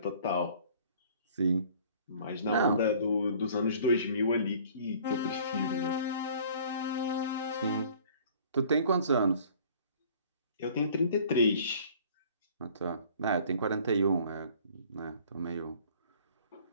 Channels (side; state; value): both; inverted; correlation -0.52